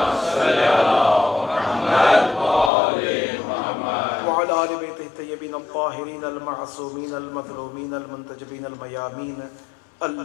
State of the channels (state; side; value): drops out; right; at 2.7 s